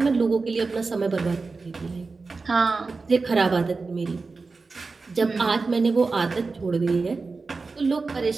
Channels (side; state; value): left; quieter; 4.1 dB